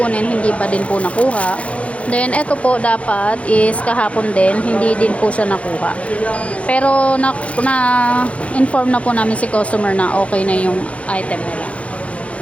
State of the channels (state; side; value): late; right; 0.063 ms